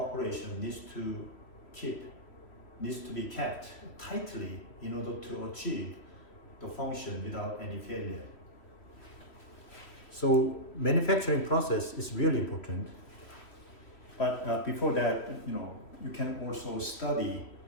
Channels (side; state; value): right; late; 3.1 ms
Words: needs to be kept tightly in order to achieve the function without any failure. So manufacturing process is really important, but before that, you can also study